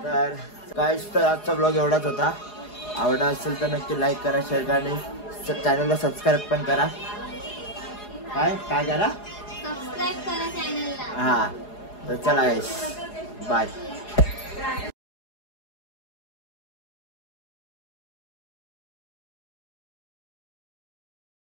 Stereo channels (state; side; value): late; right; 4.8 ms